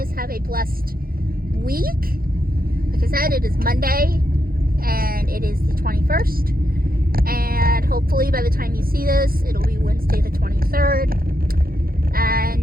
have a blessed week. Like I said, it is Monday and it is the 21st, and hopefully by the time you see this, it'll be Wednesday the 23rd.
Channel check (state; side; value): late; left; 0.43 ms